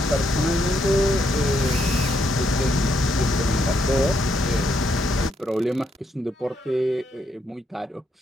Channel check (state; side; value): normal; both; correlation 0.76